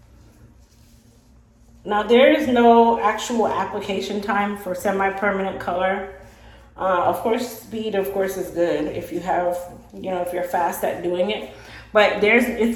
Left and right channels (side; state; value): both; identical; correlation 1.00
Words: Now there is no actual application time for semi-permanent color. Of course, speed of course is good if you have, if you're fast at doing it, but it's